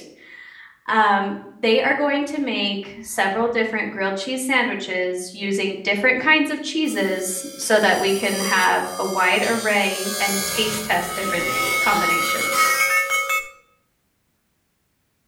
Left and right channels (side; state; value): both; identical; correlation 1.00